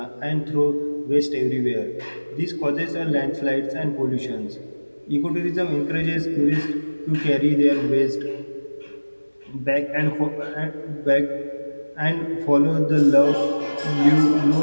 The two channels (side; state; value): both; inverted; correlation -1.00